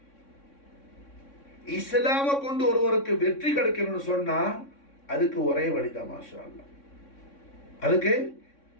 இஸ்லாமை கொண்டு ஒருவருக்கு வெற்றி கிடைக்கணும்னு சொன்னா அதுக்கு ஒரே வழிதான் மாஷா அல்லாஹ். அதுக்கு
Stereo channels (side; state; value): right; late; 3.6 ms